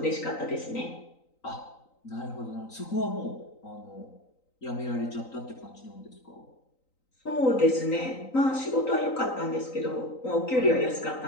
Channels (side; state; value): right; late; 3.9 ms